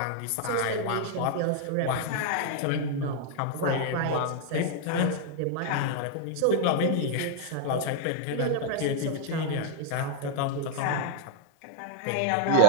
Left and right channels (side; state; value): both; different; correlation 0.00